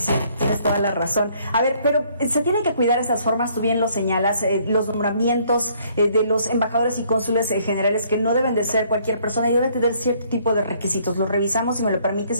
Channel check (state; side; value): inverted; both; correlation -0.64